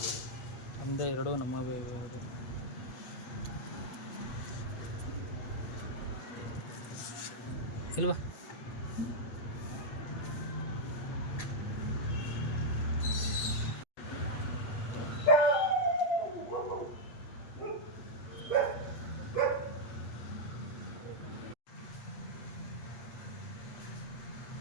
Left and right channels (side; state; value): right; late; 8.4 ms